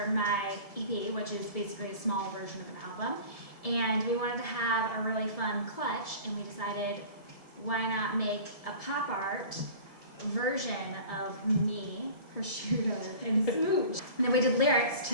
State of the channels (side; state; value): right; late; 1.7 ms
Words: my EP, which is basically a small version of an album. And we wanted to have a really fun clutch, and we decided why not make a pop art version of me, prosciutto, and smooch. And then we did lyrics to